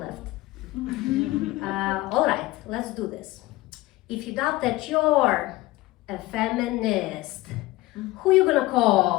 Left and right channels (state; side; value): quieter; right; 18.8 dB